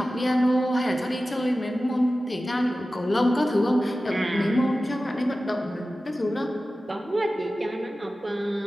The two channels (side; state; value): both; normal; correlation 0.95